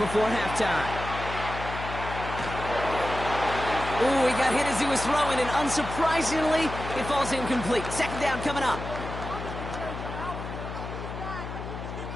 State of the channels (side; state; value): left; noise; hum, 8 dB below the sound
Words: halftime. Ooh, he got hit as he was throwing, and unsurprisingly, it falls incomplete. Second down coming up.